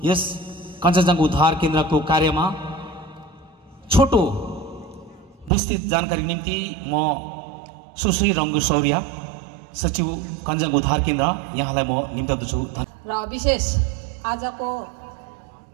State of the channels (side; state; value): left; drops out; at 5.5 s